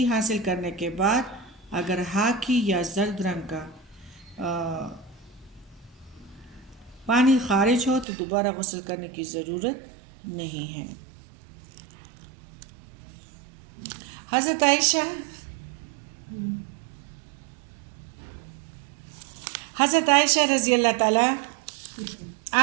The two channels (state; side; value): drops out; left; at 8.1 s